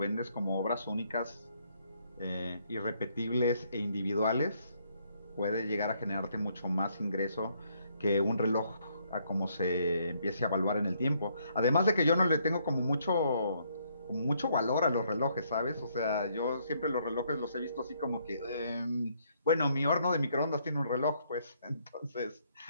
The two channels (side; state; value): both; inverted; correlation -0.70